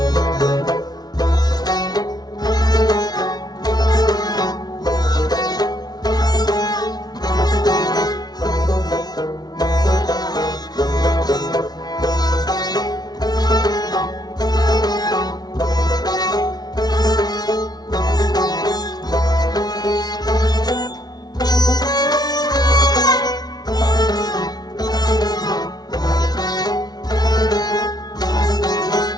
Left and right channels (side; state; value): right; late; 0.19 ms